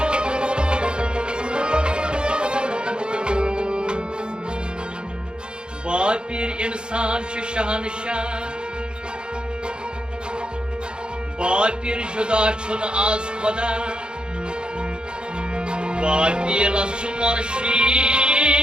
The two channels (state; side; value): late; left; 0.050 ms